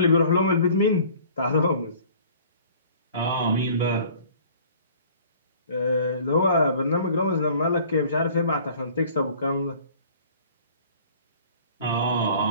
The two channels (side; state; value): both; inverted; correlation -0.51